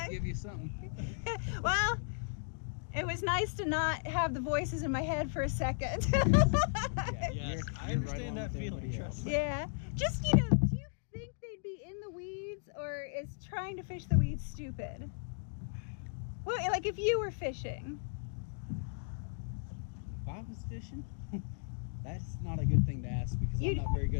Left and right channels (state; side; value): silent; right; digital silence